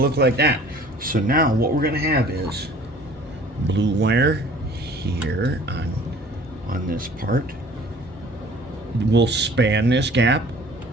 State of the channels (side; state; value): both; normal; correlation 0.50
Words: look like that. So now what we're going to have is blue wire here on this part. We'll span this gap.